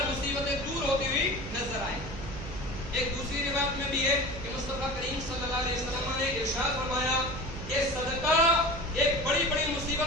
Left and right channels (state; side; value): noise; right; hum, 10 dB below the sound